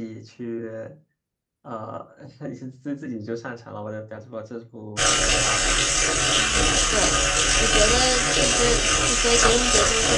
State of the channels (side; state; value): both; identical; correlation 1.00